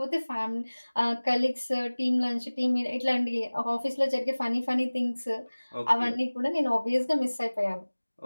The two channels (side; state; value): both; inverted; correlation -1.00